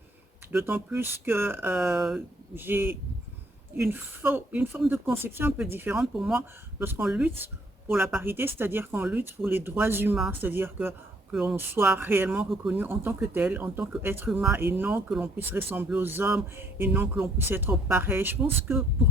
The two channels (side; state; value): both; normal; correlation 0.65